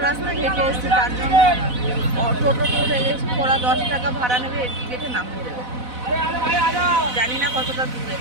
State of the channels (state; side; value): late; left; 4.0 ms